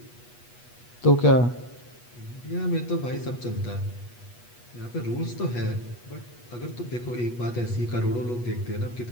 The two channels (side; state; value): right; late; 8.3 ms